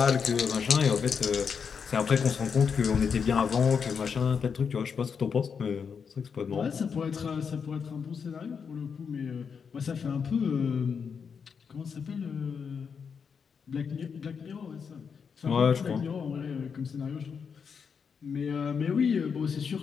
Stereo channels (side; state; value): right; quieter; 6.3 dB